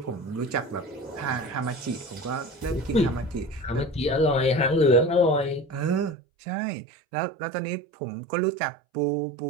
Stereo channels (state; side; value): drops out; left; at 6.2 s